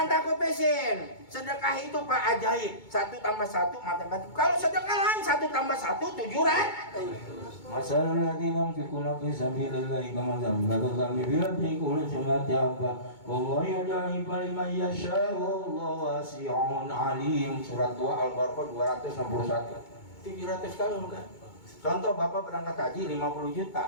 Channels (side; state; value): right; late; 2.2 ms